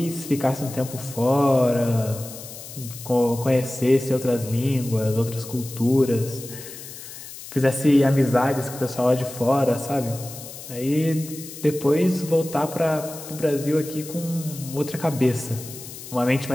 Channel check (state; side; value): noise; left; hiss, 13 dB below the sound